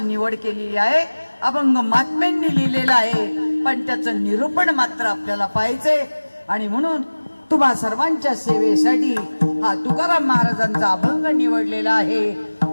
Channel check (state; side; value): inverted; both; correlation -1.00